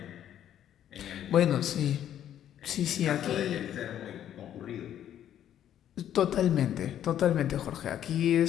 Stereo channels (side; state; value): right; quieter; 10.7 dB